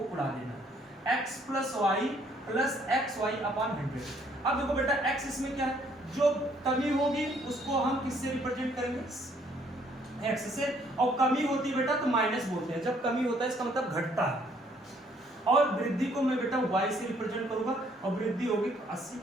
उड़ा देना, x plus y plus x y upon 100। अब देखो बेटा x इसमें क्या है, जो कमी होगी उसको हम किससे रिप्रेजेंट करेंगे, x से, और कमी होती है बेटा तो माइनस बोलते हैं, जब कमी होता है इसका मतलब घटता है, और वृद्धि को मैं बेटा y से रिप्रेजेंट करूंगा और वृद्धि होगी तो 80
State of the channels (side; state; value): both; normal; correlation 0.65